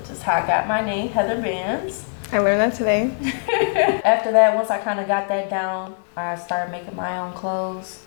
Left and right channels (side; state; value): right; silent; digital silence